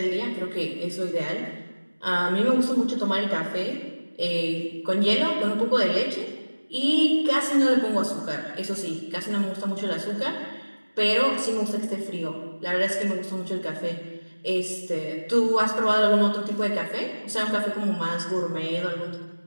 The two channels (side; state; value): both; inverted; correlation -1.00